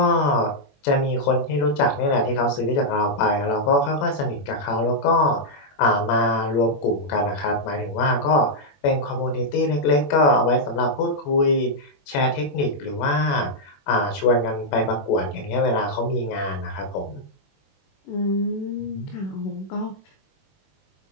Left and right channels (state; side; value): late; right; 21 ms